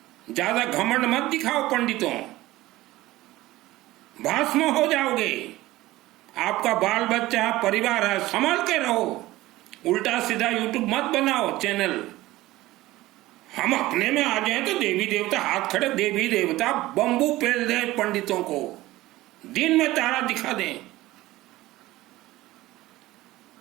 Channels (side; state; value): left; quieter; 17.5 dB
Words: ज्यादा घमंड मत दिखाओ पंडितों, भस्म हो जाओगे। आपका बाल बच्चा परिवार है, संभाल के रहो। उल्टा सीधा YouTube मत बनाओ चैनल। हम अपने में आ जाए तो देवी देवता हाथ खड़े, देवी देवता बंबू पेल दे पंडितों को, दिन में तारा दिखा दें।